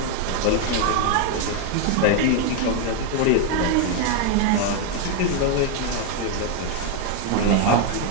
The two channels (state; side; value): different; both; correlation 0.01